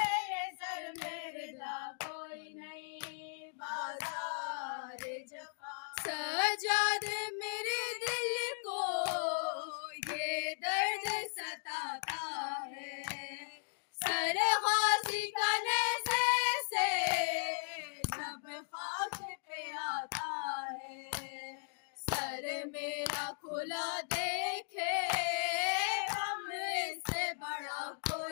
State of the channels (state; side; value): silent; right; digital silence